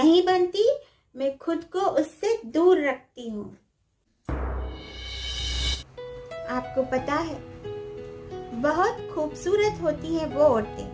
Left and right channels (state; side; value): identical; both; correlation 1.00